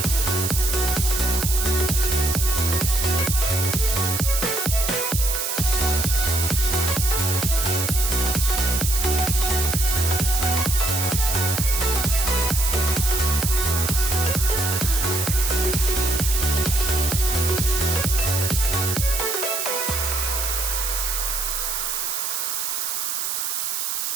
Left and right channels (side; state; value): right; noise; hiss, 1 dB below the sound